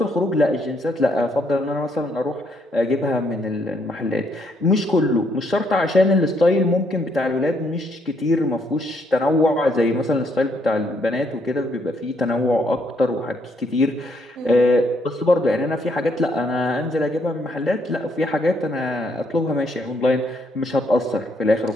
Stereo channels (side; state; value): both; normal; correlation 0.72